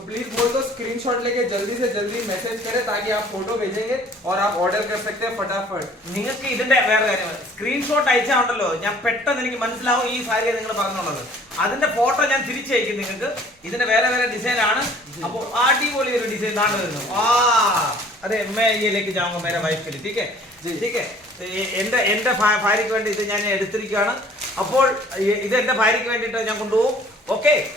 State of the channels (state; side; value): normal; both; correlation 0.54